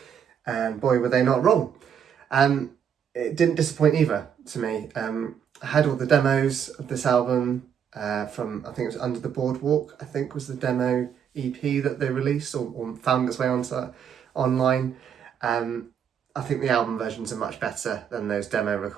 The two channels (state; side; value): quieter; left; 8.1 dB